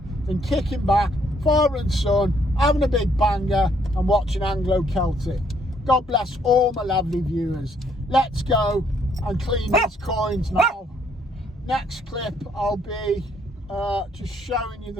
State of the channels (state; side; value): normal; both; correlation 0.68